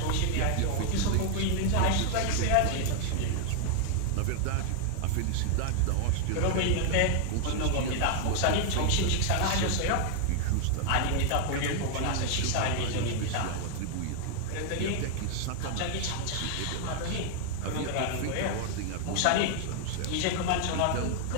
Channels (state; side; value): different; both; correlation 0.00